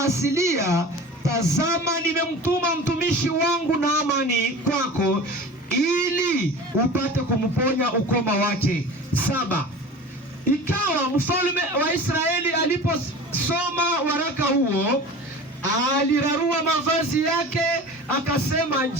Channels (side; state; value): both; normal; correlation 0.37